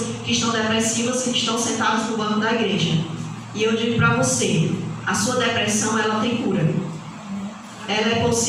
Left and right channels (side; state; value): both; identical; correlation 1.00